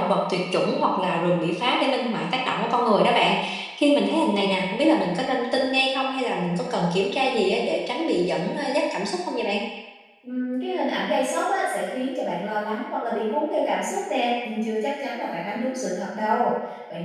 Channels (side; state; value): both; identical; correlation 1.00